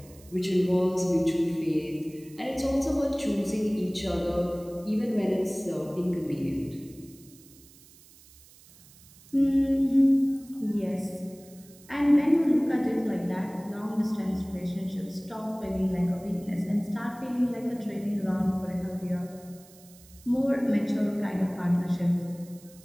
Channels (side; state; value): right; noise; hiss, 24 dB below the sound